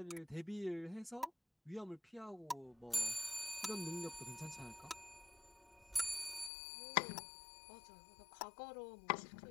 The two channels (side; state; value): right; drops out; at 6.5 s